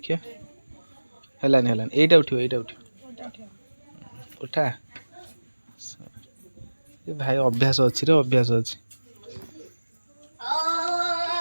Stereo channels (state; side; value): inverted; both; correlation -1.00